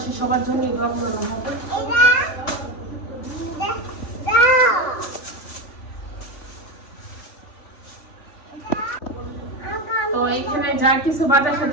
সবার জন্য দোয়া করানো হবে। তো এখানে যা কিছু বাজার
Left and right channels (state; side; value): late; right; 3.5 ms